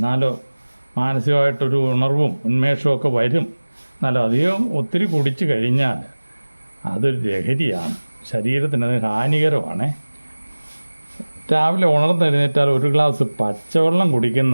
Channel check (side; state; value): both; inverted; correlation -1.00